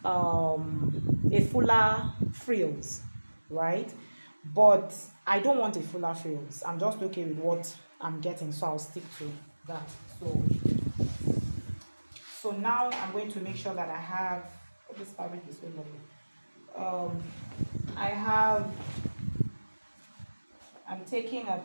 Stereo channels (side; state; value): both; inverted; correlation -1.00